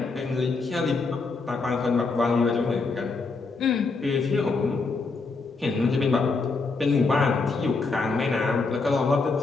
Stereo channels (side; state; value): right; quieter; 4.1 dB